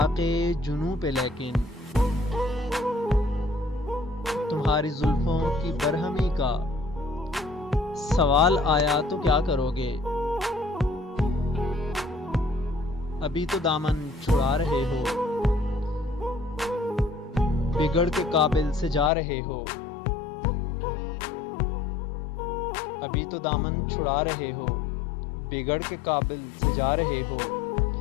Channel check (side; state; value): right; drops out; at 19.1 s